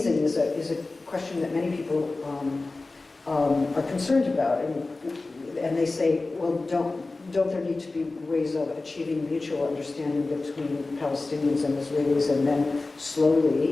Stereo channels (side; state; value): right; quieter; 3.4 dB